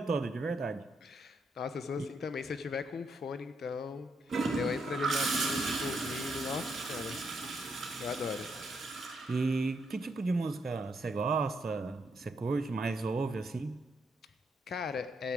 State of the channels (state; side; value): normal; both; correlation 0.77